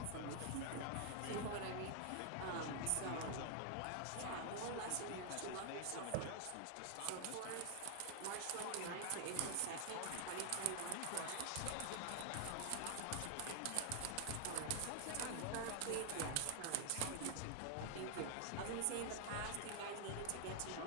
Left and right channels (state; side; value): different; both; correlation 0.00